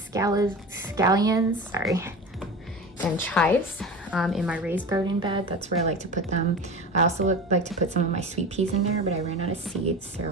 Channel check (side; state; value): both; normal; correlation 0.30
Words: scallions, sorry, and chives in my raised garden bed. That's where I like to put them. I also like to put some of my sweet peas in there, but I ran out of seeds,